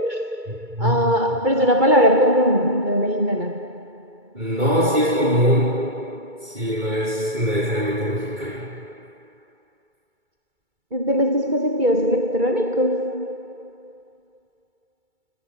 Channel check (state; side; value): late; left; 2.3 ms